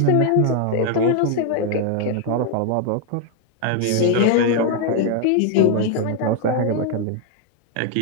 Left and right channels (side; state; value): both; different; correlation 0.00